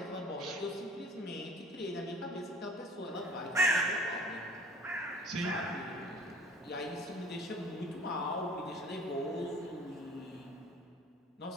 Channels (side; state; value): both; normal; correlation 0.48